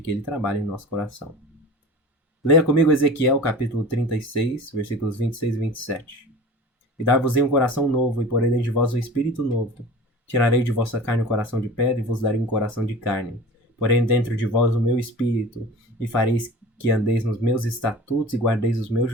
que Ele trabalha em nosso coração. Leia comigo Ezequiel capítulo 36, versículos 26 e 27. E dar-vos-ei um coração novo, e porei dentro de vós um espírito novo. Tirarei de vossa carne um coração de pedra, e vos darei um coração de carne. Porém dentro de vós o meu espírito, e fareis que andeis nos meus estatutos, e guardeis os meus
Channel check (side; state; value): both; normal; correlation 0.38